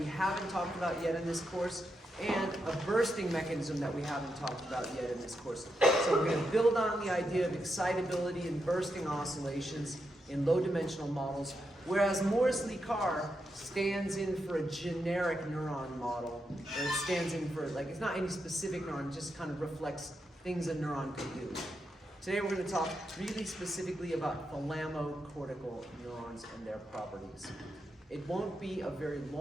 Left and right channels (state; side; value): normal; both; correlation 0.84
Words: haven't talked about yet in this course, and a bursting mechanism that we haven't talked about yet in this course. So we're going to build on the idea of excitability and bursting oscillations in low-dimensional models, whereas Morris-Lee Carr stands in for a generic neuron model, or it stands in for, like, it's not any specific neuron, it just kind of reflects things a neuron can do. Today we're going to talk really specifically about thalamocortical neurons and their properties. It won't be a very